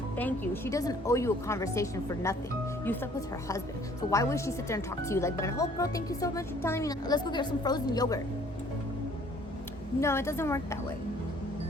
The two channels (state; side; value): normal; both; correlation 0.57